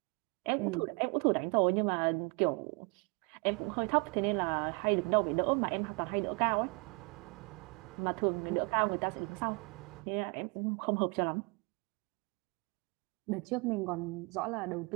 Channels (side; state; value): left; quieter; 31.7 dB